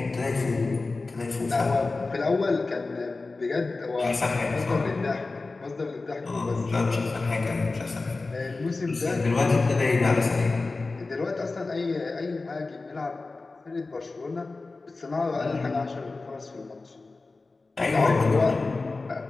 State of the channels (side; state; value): right; quieter; 3.6 dB